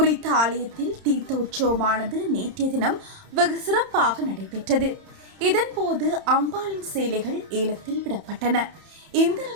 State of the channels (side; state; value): left; late; 30 ms